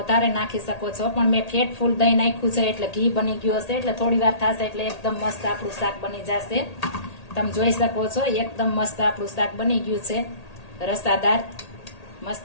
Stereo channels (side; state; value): right; late; 1.8 ms